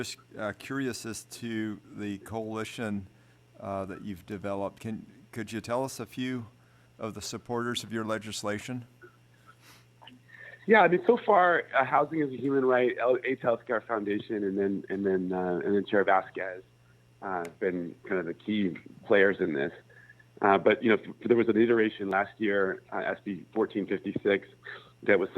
curious as to the coalition that you've developed. Could you tell us a few of the supporters of your legislation? Yeah, I mean, so far, Housing is a Human Right, AIDS Healthcare Foundation, and then Chair Vasquez have been kind of the key players in this. But there was an iteration last year, SB 1456, that was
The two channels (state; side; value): identical; both; correlation 1.00